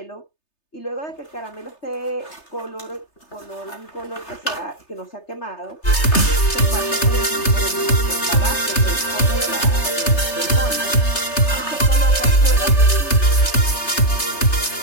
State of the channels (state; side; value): late; right; 3.3 ms